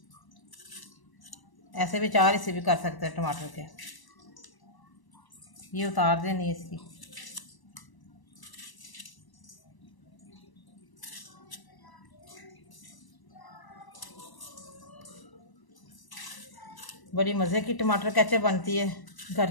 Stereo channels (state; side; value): late; right; 1.0 ms